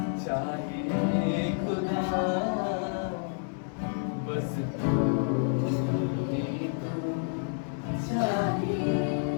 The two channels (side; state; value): right; silent; digital silence